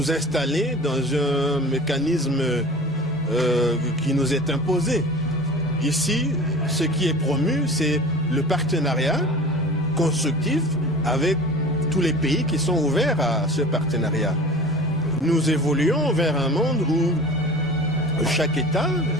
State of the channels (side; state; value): both; normal; correlation 0.38